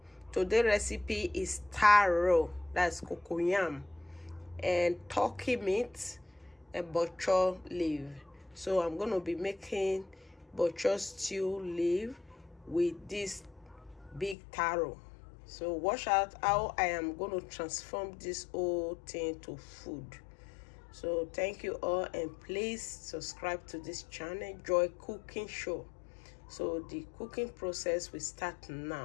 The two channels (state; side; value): drops out; right; at 14.4 s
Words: Today's recipe is taro, that's cocoyam, and turkey meat and bok choy leaf. So I'm going to be making bok choy stew leaf with this big taro. So watch out how I am going to transform this whole thing to food. So thank you all, and please subscribe to this channel, Joy Cooking Show. So the cooking process will start